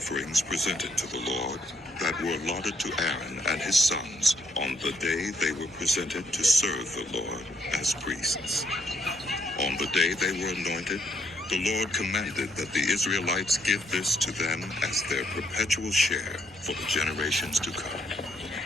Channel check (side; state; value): both; normal; correlation 0.71